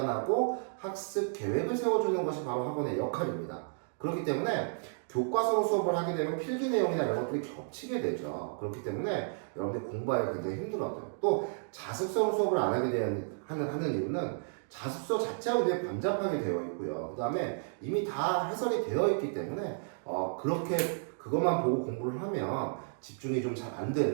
학습 계획을 세워주는 것이 바로 학원의 역할입니다. 그렇기 때문에 교과서로 수업을 하게 되면 필기 내용이나 이런 것들이 겹치게 되죠. 그렇기 때문에 여러분들이 공부하기가 굉장히 힘들어져요. 또 자습서로 수업을 안 하게 하는 이유는 자습서 자체가 굉장히 번잡하게 되어 있고요. 그 다음에 이미 다 해설이 되어 있기 때문에 그렇게 그것만 보고 공부를 하면 집중이 좀 잘 안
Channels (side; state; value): left; silent; digital silence